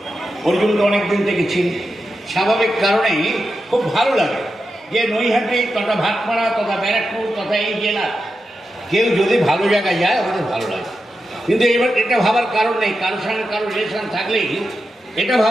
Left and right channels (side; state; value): both; normal; correlation 0.89